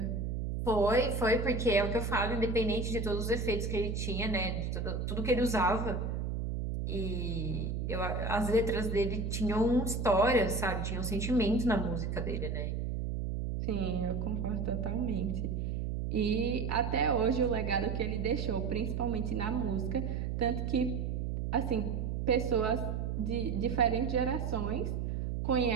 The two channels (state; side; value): noise; right; hum, 2 dB below the sound